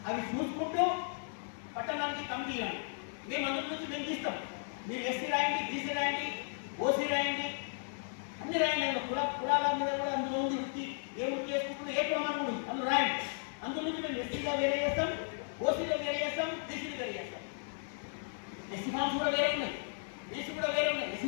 అవి చూసుకుంటూ పట్టణానికి కమిటీ ఇవ్వండి. మేము అందరి నుంచి మేము తీస్తాం. మీరు ఎస్సీ రాయండి, బీసీ రాయండి, ఓసీ రాయండి, అన్ని రాయండి. అందులో కులాల మీద కూడా అందులో ఉంది వృత్తి, ఏ వృత్తి చేసుకుంటుందో ఏ ప్రమాణం ఉంది అందులో రాయండి. అందులో నుంచి మేము ఎస్సీగా వేరే చేస్తాం, ఓసీలో వేరే చేస్తాం, బీసీలో వేరే చేస్తాం. ఎస్సీ ఫామ్స్ కూడా వేరే ఉన్నాయి, బీసీ కూడా వేరే ఉన్నాయి.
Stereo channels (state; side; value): silent; right; digital silence